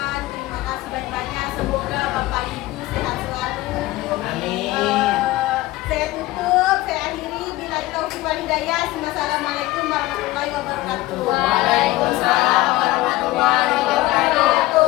terima kasih banyak-banyak. Semoga Bapak Ibu sehat selalu. Amin. Saya tutup, saya akhiri. Bila taufiq wal hidayah. Wassalamualaikum warahmatullahi wabarakatuh.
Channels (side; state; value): right; quieter; 18.1 dB